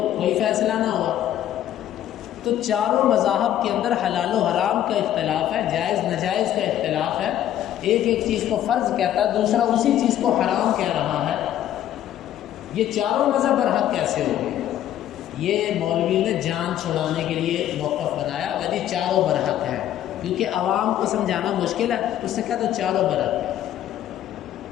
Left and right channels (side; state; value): right; quieter; 11.7 dB